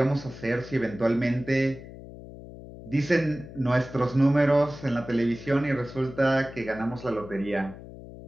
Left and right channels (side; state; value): left; noise; hum, 15 dB below the sound